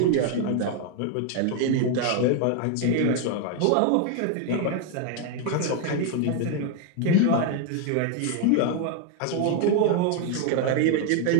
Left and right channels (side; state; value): both; different; correlation 0.01